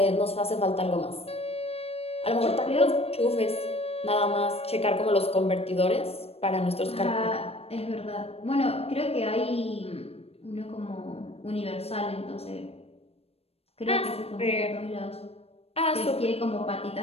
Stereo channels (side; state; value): right; late; 0.29 ms